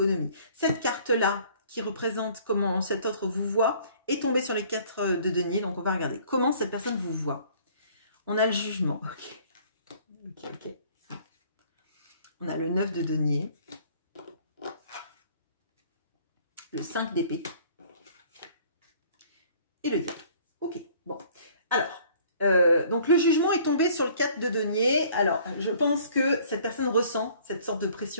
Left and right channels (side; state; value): both; inverted; correlation -0.55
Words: Cette carte-là, qui représente comment cet autre vous voit, est tombée sur les 4 de denier. Donc, on va regarder comment cette personne vous voit. On a le jugement. Ok. On a le 9 de denier. Le 5 d'épée. Et le diable. Ok, bon. Alors, donc le jugement est tombé sur le 4 de denier. Alors, je pense que cette personne ressent cette sorte de